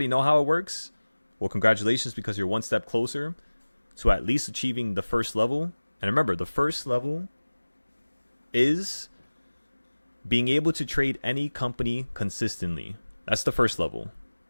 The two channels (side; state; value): both; inverted; correlation -1.00